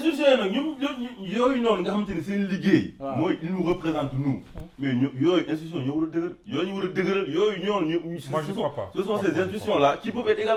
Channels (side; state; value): both; identical; correlation 1.00